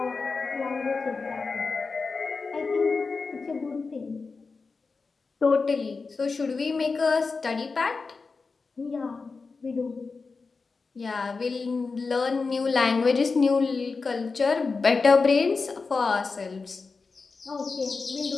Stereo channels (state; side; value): quieter; right; 4.4 dB